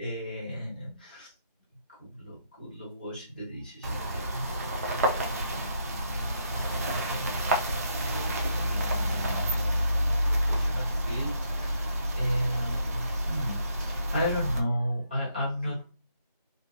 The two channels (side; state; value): both; inverted; correlation -0.76